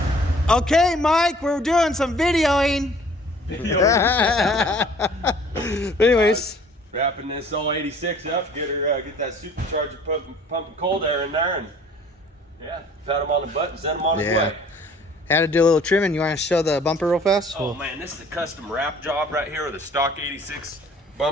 Okay, Mike, we're doing some videoing. Anyways, wrapping this old 86 up, get that supercharger pumping cold air in there, and yeah, pat them on the butt and send them on his way. Had to do a little trimming. You want to show the bumper real fast? Oh man, this is a custom wrap job right here with a stock 86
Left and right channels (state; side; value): normal; both; correlation 0.53